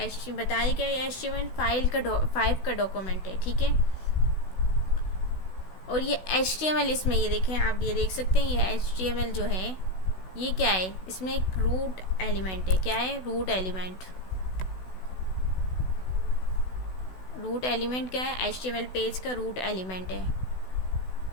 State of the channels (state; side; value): late; right; 16 ms